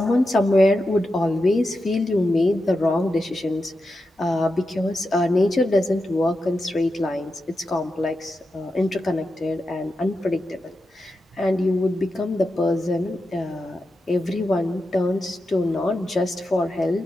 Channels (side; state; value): both; normal; correlation 0.89